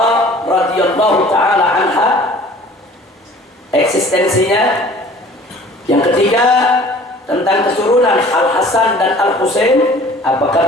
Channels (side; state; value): both; normal; correlation 0.49